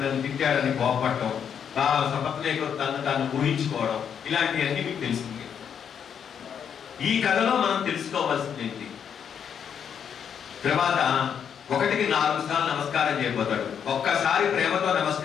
నన్ను తిట్టాడని కోపపడటం, సపత్నేకర్ తను ఊహించుకోవడం, ఇలాంటివన్నీ మీకు తెలిసింది. ఈ కథలో మనం తెలుసుకోవాల్సింది ఏంటి, తర్వాత 1కి 4 సార్లు నమస్కారం చేయబోతాడు. ఒక్కసారి ప్రేమతో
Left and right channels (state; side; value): quieter; right; 7.9 dB